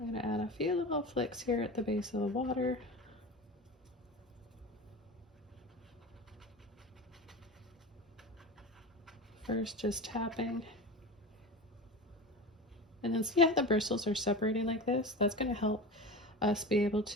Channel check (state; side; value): normal; both; correlation 0.29